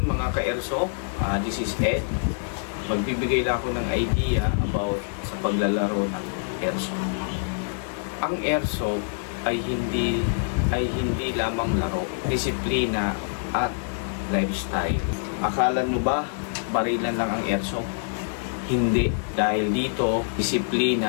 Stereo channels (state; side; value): silent; right; 61 dB below the other